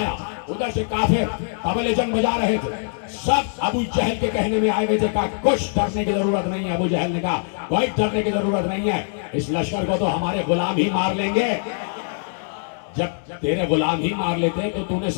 ادھر سے کافر طبل جنگ بجا رہے تھے. سب ابو جہل کے کہنے میں آئے ہوئے تھے. کہا کچھ ڈرنے کی ضرورت نہیں ہے. ابو جہل نے کہا کوئی ڈرنے کی ضرورت نہیں ہے، اس لشکر کو تو ہمارے غلام ہی مار لیں گے. جب تیرے غلام ہی مار لیتے تو تو نے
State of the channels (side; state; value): right; silent; digital silence